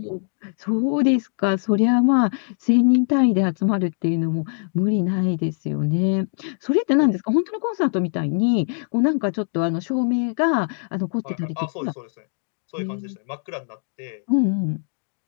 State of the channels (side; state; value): right; silent; digital silence